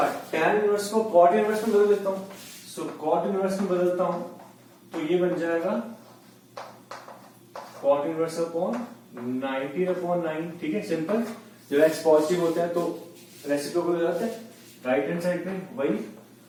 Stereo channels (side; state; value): both; identical; correlation 1.00